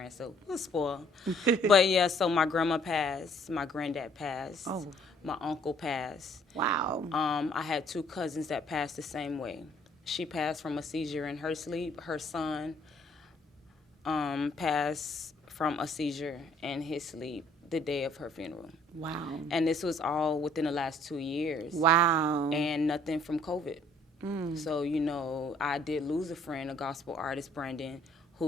So we were spoiled. But yeah, so my grandma passed, my granddad passed, my uncle passed. Wow. I had 2 cousins that passed the same way. She passed from a seizure in her sleep. Her son passed from a seizure in his sleep the day of her funeral. Wow. And this was all within the last 2 years. Wow. And nothing from COVID. So, I did lose a friend, a gospel artist, Brandon,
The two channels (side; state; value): both; normal; correlation 0.62